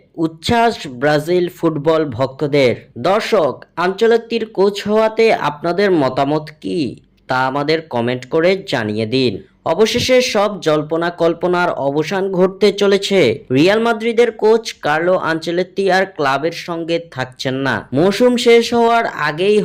উচ্ছ্বাস ব্রাজিল ফুটবল ভক্তদের। দর্শক, আনচেলত্তির কোচ হওয়াতে আপনাদের মতামত কি তা আমাদের কমেন্ট করে জানিয়ে দিন। অবশেষে সব জল্পনা কল্পনার অবসান ঘটতে চলেছে। রিয়াল মাদ্রিদের কোচ কার্লো আনচেলত্তি আর ক্লাবের সঙ্গে থাকছেন না। মৌসুম শেষ হওয়ার আগেই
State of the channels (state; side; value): identical; both; correlation 1.00